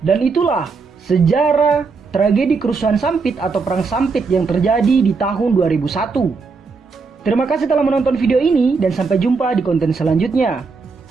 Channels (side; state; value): left; quieter; 4.6 dB